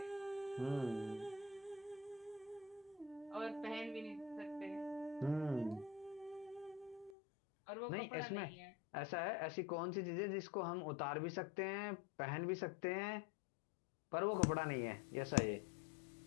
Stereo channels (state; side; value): drops out; right; at 7.2 s